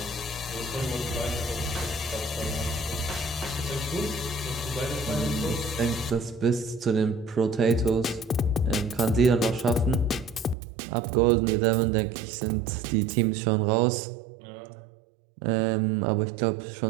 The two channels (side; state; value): left; drops out; at 10.6 s